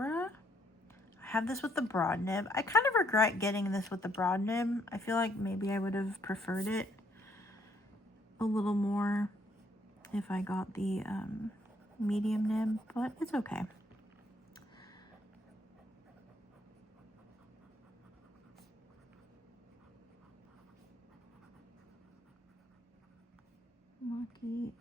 I have this with the broad nib. I kind of regret getting this with the broad nib. I feel like maybe I would have preferred it a little more if I got the medium nib, but it's okay. Makie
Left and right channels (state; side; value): normal; both; correlation 0.70